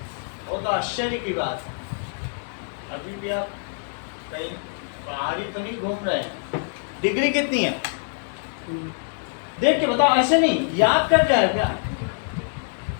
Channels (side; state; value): right; silent; 60 dB below the other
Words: वो तो आश्चर्य की बात। अभी भी आप कहीं बाहर ही तो नहीं घूम रहे हैं। डिग्री कितनी है देख के बताओ, ऐसे नहीं याद कर जाए क्या?